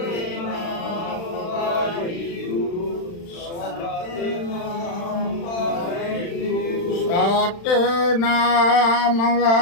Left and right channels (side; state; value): right; late; 35 ms